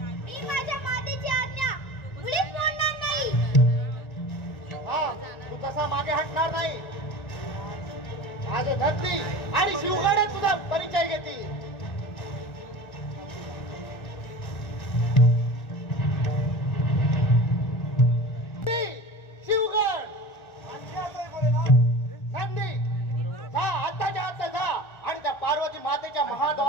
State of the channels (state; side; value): late; right; 1.4 ms